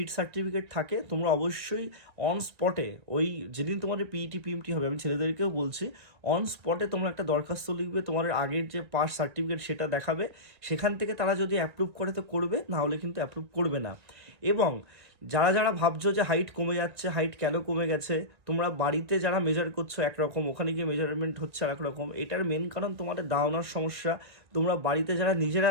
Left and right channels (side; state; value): left; late; 1.8 ms